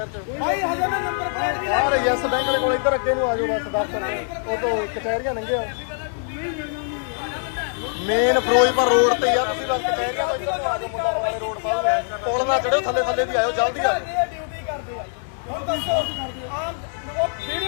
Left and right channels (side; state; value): right; silent; 63 dB below the other